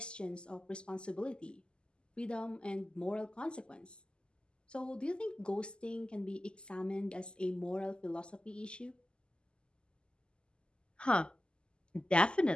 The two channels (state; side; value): late; right; 0.049 ms